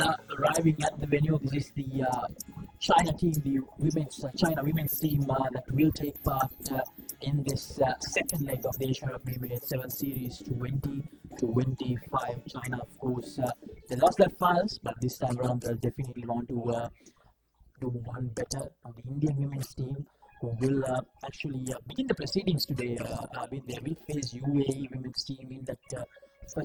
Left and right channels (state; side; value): identical; both; correlation 1.00